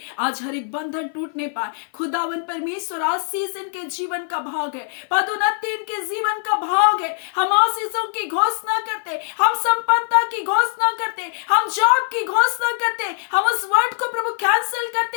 आज हर एक बंधन टूटने पाए। खुदावन परमेश्वर आशीष इनके जीवन का भाग है, पदोन्नति इनके जीवन का भाग है। हम आशीषों की घोषणा करते, हम संपन्नता की घोषणा करते, हम जॉब की घोषणा करते, हम उस वर्ड को प्रभु कैंसिल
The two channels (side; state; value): right; silent; 56 dB below the other